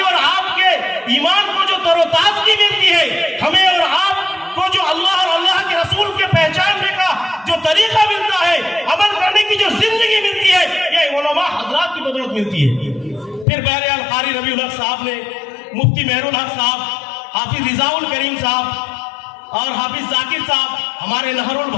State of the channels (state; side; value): drops out; right; at 13.5 s